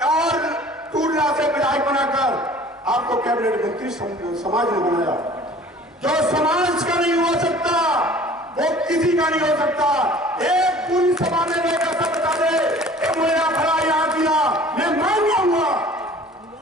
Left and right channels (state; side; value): normal; both; correlation 0.48